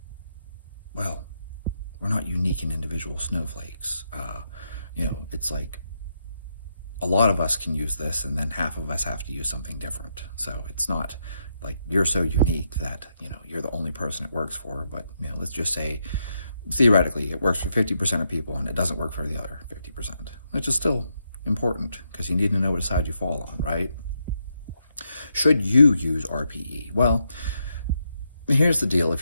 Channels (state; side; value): inverted; both; correlation -0.81